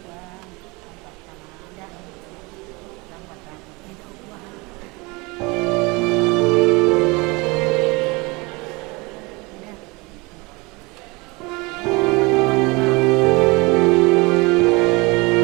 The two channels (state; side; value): quieter; left; 25.8 dB